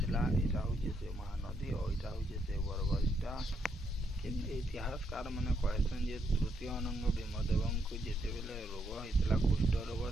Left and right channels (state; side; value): normal; both; correlation 0.77